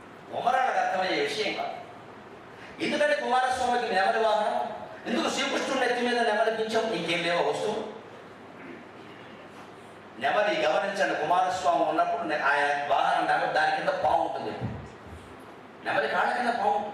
కుమారాలకు అర్థమయ్యే విషయం కాదు. ఎందుకంటే కుమారస్వామికి నెమలి వాహనం, ఎందుకు శ్రీకృష్ణుడి నెత్తి మీద నెమలిపించాం? ఇంకేం లేవో వస్తువు. నెమలి గమనించండి, కుమారస్వామి ఉన్నప్పుడు ఆయన వాహనం నెమలి, దాని కింద పాము ఉంటుంది. నెమలి కాళ్ళ కింద పాము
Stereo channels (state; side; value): identical; both; correlation 1.00